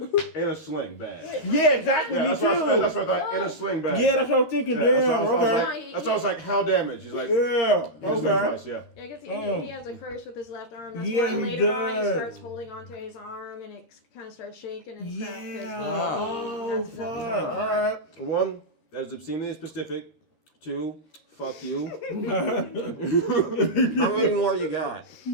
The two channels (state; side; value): late; right; 13 ms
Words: in a sling bag. Yeah, exactly. Yeah, me that's too. what I thought. In a sling bag. Yeah, that's what I was thinking. Yeah, Damn. Okay. that's why I was like, how damaged? He's like, Yeah. his Okay. advice, yeah. Yeah, I guess he has a curse with his left arm. That's Yeah, why he later on he does. starts holding onto his arm and it kind of starts shaking and stuff. 'cause Yeah. Oh that's fuck. something. All right. 1, that is obscenely specific. 2, fuck you. How many more you got?